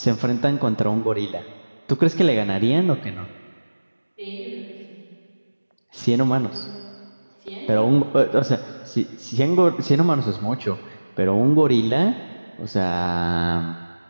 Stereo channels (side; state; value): both; inverted; correlation -1.00